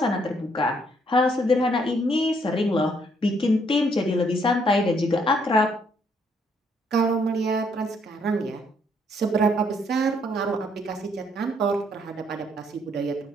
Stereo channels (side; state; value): both; normal; correlation 0.69